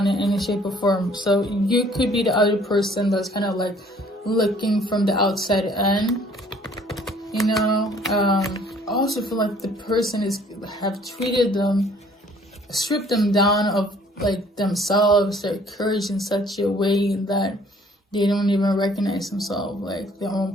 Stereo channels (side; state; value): both; normal; correlation 0.57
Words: in any shape or form. So you could be the other person that's kind of like looking from the outside in, you know. I also feel like the person have stripped them down of like themselves, their courage, in such a way that they don't even recognize themselves, like their own